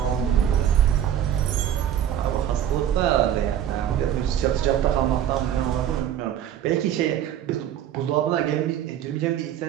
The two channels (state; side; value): quieter; left; 10.4 dB